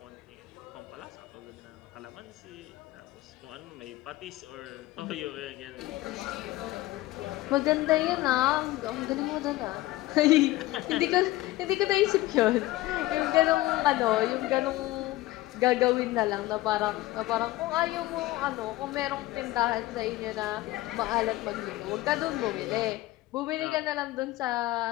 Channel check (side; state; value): right; quieter; 17.8 dB